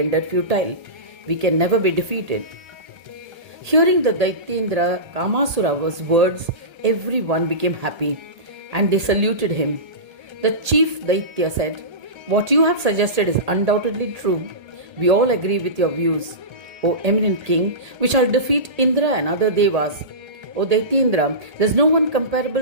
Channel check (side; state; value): left; late; 1.8 ms